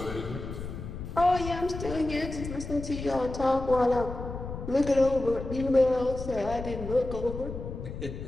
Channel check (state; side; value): noise; left; rumble, 8 dB below the sound